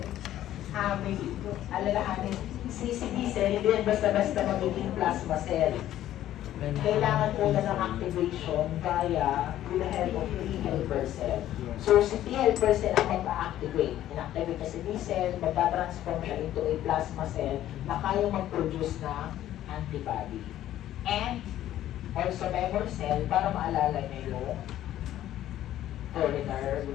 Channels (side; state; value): right; quieter; 12.8 dB